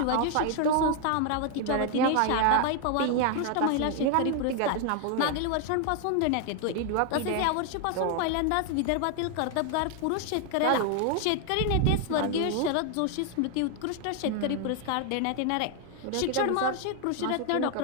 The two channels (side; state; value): both; different; correlation 0.01